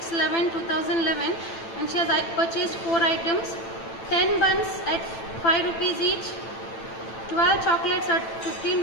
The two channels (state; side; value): late; right; 9.0 ms